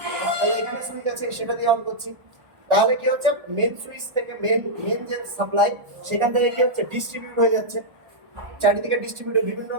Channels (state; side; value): late; left; 1.4 ms